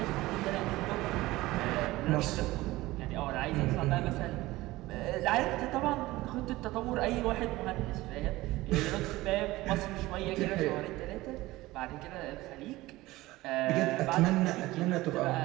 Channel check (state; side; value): quieter; left; 18.5 dB